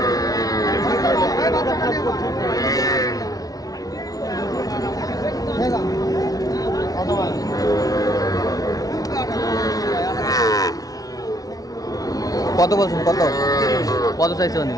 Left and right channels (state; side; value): late; right; 0.18 ms